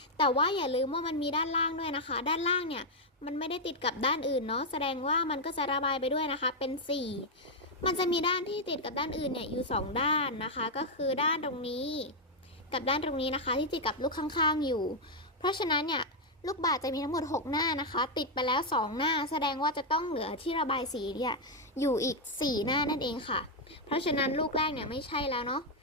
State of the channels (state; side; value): normal; both; correlation 0.00